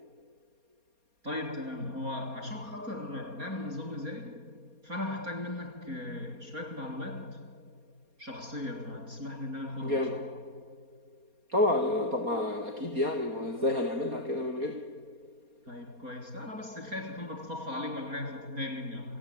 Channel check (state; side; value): late; left; 4.3 ms